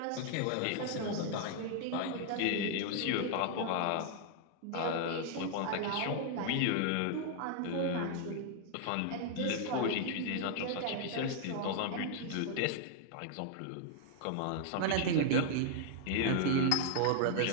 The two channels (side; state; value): both; different; correlation 0.00